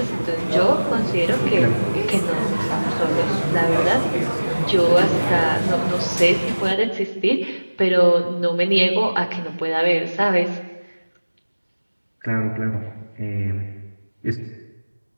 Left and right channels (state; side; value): inverted; both; correlation -1.00